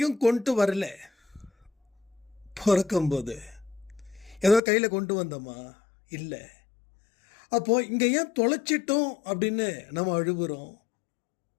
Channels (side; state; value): right; drops out; at 4.6 s